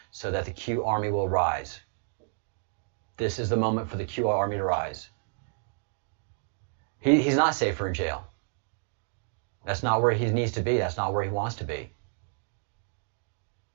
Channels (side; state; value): left; silent; digital silence